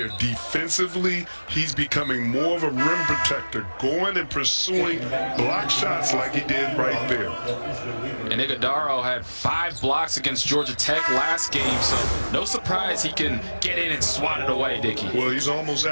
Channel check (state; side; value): inverted; both; correlation -1.00